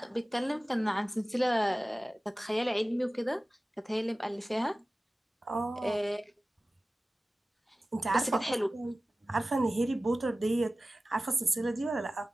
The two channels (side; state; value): both; normal; correlation 0.96